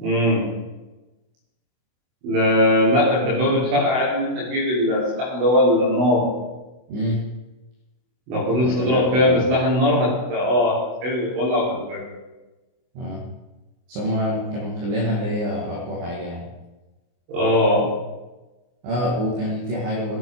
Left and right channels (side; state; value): left; late; 24 ms